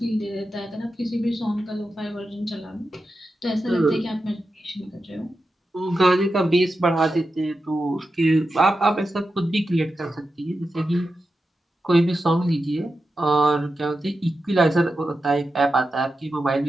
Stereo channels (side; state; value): both; normal; correlation 0.90